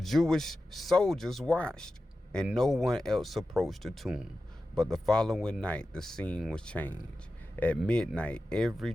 soldiers watched, and no one else approached the tomb. But the following night, the scene was changed. At midnight, every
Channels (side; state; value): both; normal; correlation 0.93